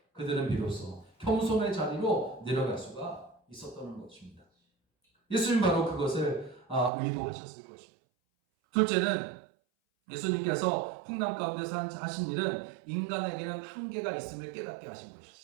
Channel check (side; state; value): left; drops out; at 6.9 s